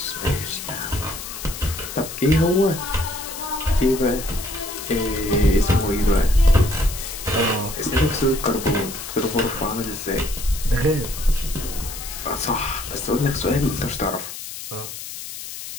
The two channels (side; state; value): left; noise; hiss, 10 dB below the sound